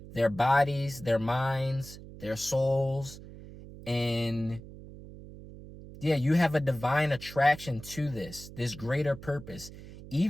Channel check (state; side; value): noise; right; hum, 15 dB below the sound